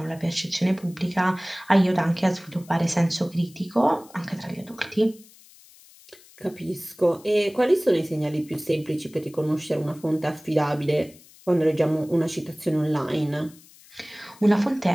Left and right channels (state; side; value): noise; left; hiss, 24 dB below the sound